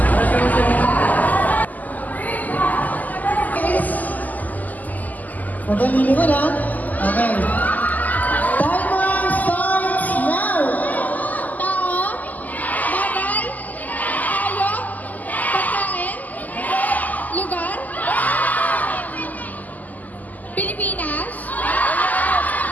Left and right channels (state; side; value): late; right; 0.081 ms